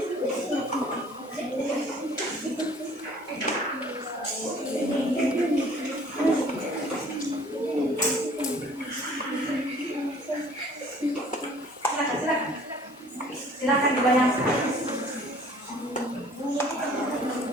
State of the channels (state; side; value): normal; both; correlation 0.53